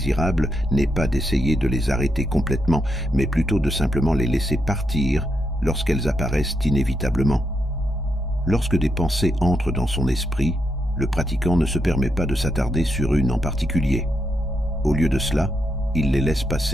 n'est pas d'essayer de les arrêter complètement, mais plutôt de simplement les laisser partir lorsqu'elles apparaissent inévitablement. Lorsque des pensées entrent dans son esprit, le pratiquant ne se permet pas de s'attarder sur une en particulier. Au lieu de cela, il les laisse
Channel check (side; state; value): both; normal; correlation 0.82